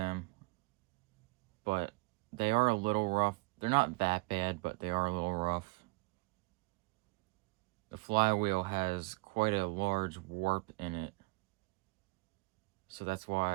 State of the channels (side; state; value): left; quieter; 27.6 dB